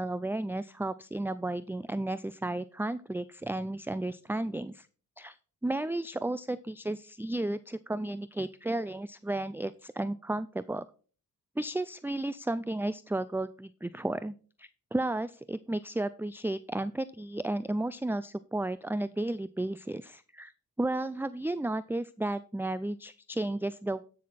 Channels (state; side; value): normal; both; correlation 0.91